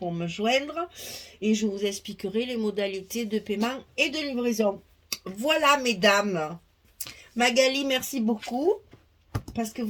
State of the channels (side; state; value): both; identical; correlation 1.00